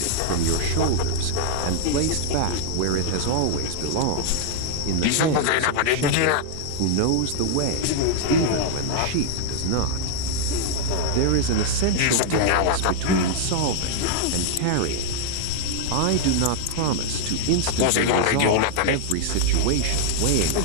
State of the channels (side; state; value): both; different; correlation -0.01